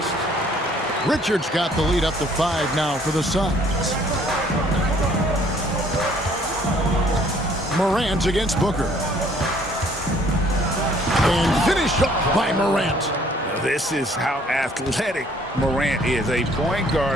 Richards got the lead up to 5 now for the Suns. Morant against Booker. And finished off by Morant. This is how athletic Morant is. A point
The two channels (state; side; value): normal; both; correlation 0.60